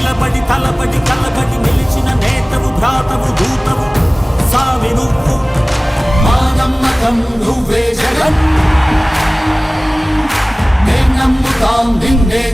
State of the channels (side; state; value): both; normal; correlation 0.98